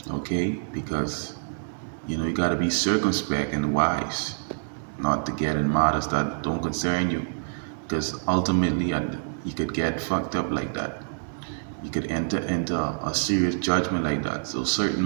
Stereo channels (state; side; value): silent; left; digital silence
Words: Okay, because you know you got to be circumspect and wise, not to get in matters that don't concern you, because ultimately you could get fucked up like that. You could enter into a serious judgment like that. So certain